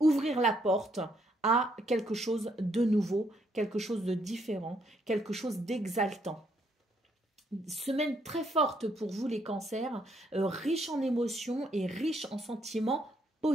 ouvrir la porte à quelque chose de nouveau, quelque chose de différent, quelque chose d'exaltant. Semaine très forte pour vous les cancers, riche en émotions et riche en sentiments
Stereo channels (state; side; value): normal; both; correlation 0.72